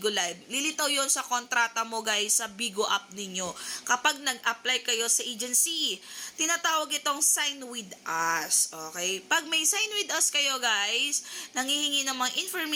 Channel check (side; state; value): both; identical; correlation 1.00